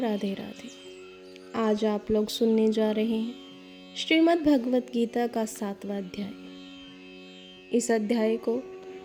राधे। आज आप लोग सुनने जा रहे हैं श्रीमद् भगवत गीता का 7वां अध्याय। इस अध्याय को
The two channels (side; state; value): both; identical; correlation 1.00